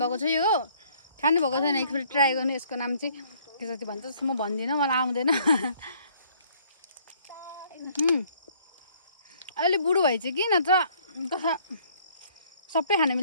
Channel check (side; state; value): both; inverted; correlation -0.61